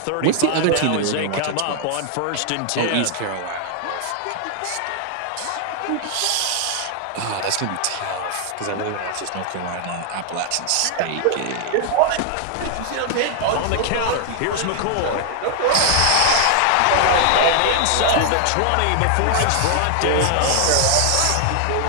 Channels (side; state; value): both; different; correlation 0.00